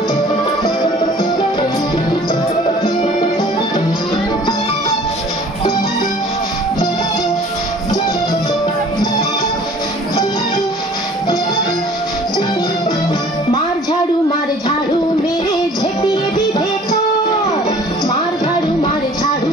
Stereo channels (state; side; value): normal; both; correlation 0.50